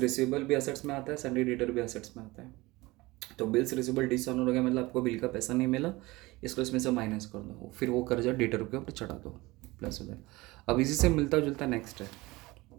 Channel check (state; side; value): quieter; left; 21.2 dB